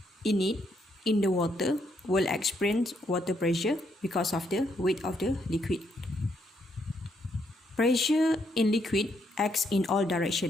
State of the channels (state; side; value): normal; both; correlation 0.75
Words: in it in the water will experience water pressure because of the weight of the liquid. Pressure in liquid acts in all